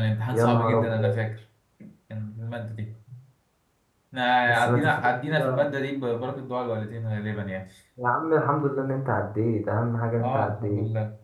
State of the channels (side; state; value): both; identical; correlation 1.00